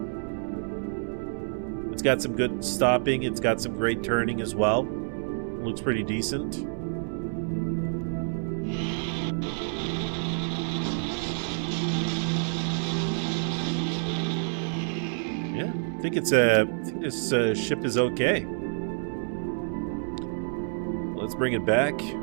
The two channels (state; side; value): silent; left; 58 dB below the other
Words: It's got some good stopping. It's got some great turning as well. Looks pretty decent. Yeah, I think this ship is okay. Let's bring it back.